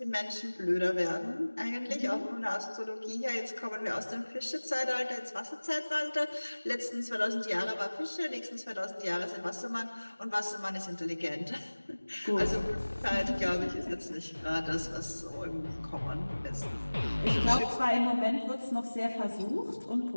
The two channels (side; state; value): both; inverted; correlation -1.00